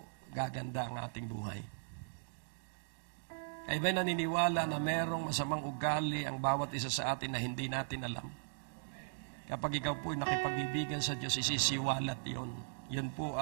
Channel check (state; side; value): silent; left; digital silence